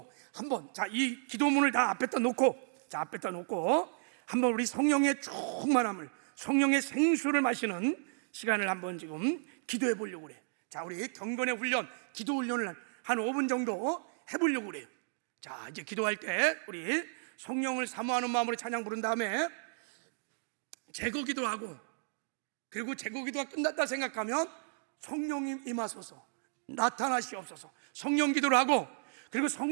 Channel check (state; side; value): silent; left; digital silence